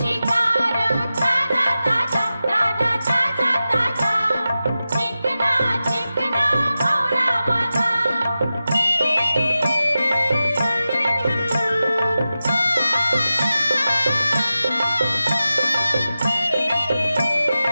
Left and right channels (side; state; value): both; inverted; correlation -0.93